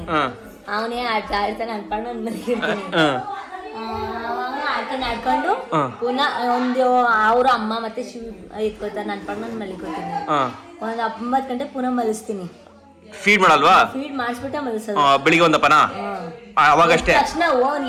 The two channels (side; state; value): both; identical; correlation 1.00